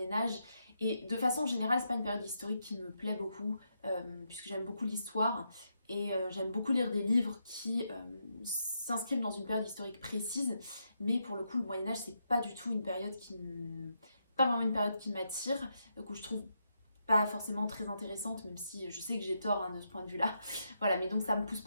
et de façon générale c'est pas une période historique qui me plaît beaucoup, puisque j'aime beaucoup l'histoire, et j'aime beaucoup lire des livres qui s'inscrivent dans une période historique précise, mais pour le coup le Moyen-Âge c'est pas du tout une période pas vraiment une période qui m'attire, que je trouve pas forcément très intéressante, même si je sais que j'ai tort de ce point de vue-là. Voilà, mais donc ça me pousse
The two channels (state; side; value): inverted; both; correlation -0.82